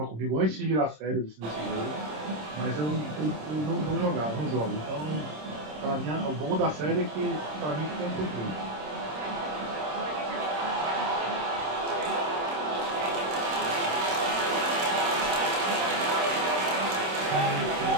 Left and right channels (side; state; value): left; late; 26 ms